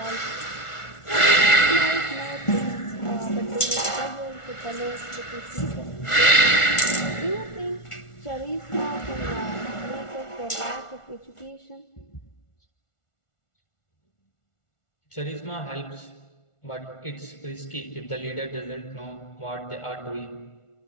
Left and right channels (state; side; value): late; right; 1.4 ms